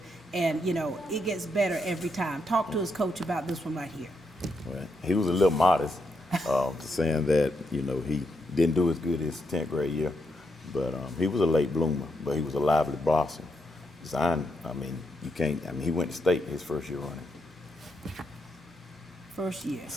and, you know, it gets better every time. Talk to us, Coach, about this one right here. Well, he was a little modest, saying that, you know, he didn't do as good his 10th grade year, but he was a late bloomer, but he was a lively blossom. Zion, he went to state his first year running. First year.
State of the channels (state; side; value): normal; both; correlation 0.81